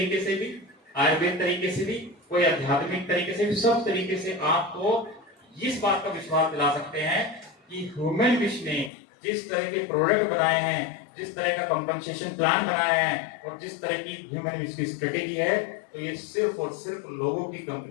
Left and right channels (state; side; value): drops out; right; at 8.9 s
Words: से भी, आयुर्वेद तरीके से भी, कोई आध्यात्मिक तरीके से भी, सब तरीके से आपको इस बात का विश्वास दिला सकते हैं कि ह्यूमन विश ने जिस तरह के प्रोडक्ट बनाए हैं, जिस तरह का कंपनसेशन प्लान बनाया है, और जिस तरह की ह्यूमन विश की स्ट्रेटेजी है, तो ये सिर्फ और सिर्फ लोगों की